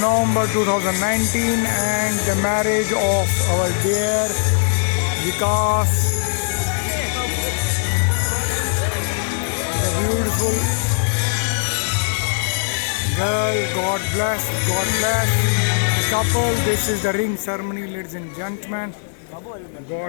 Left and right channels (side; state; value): right; silent; 56 dB below the other